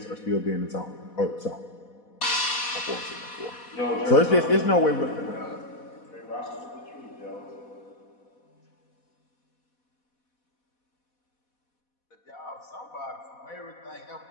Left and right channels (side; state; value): right; late; 4.1 ms